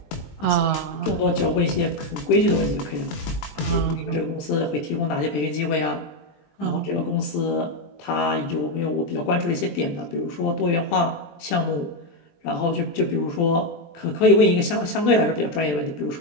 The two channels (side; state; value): right; late; 20 ms